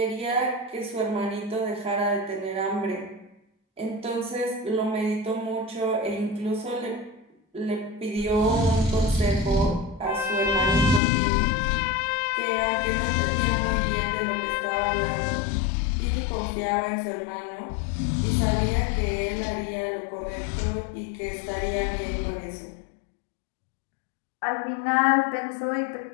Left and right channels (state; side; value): drops out; right; at 11.0 s